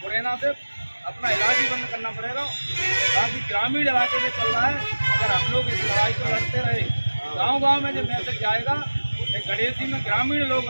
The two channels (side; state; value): both; inverted; correlation -1.00